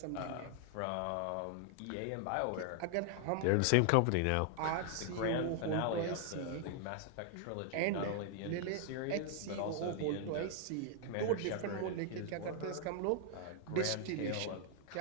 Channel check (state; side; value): different; both; correlation 0.00